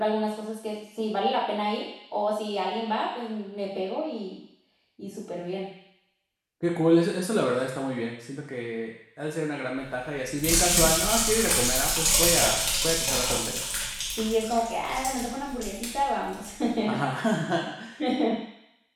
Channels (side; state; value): both; identical; correlation 1.00